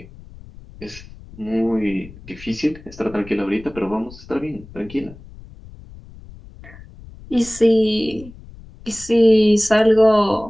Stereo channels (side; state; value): left; noise; rumble, 19 dB below the sound